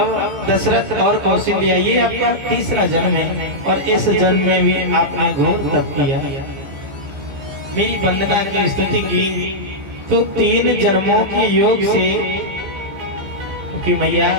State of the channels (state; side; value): late; left; 15 ms